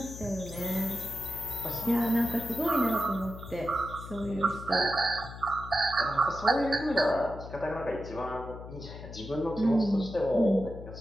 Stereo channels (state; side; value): noise; left; hum, 12 dB below the sound